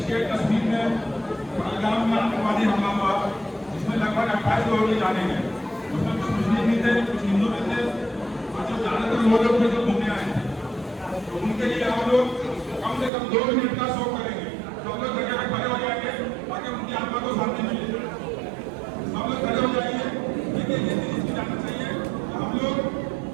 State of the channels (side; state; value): left; drops out; at 13.1 s